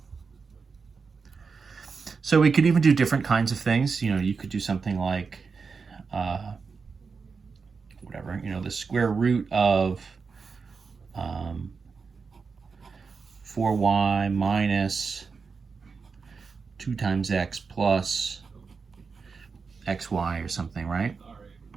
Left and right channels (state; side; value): quieter; left; 5.1 dB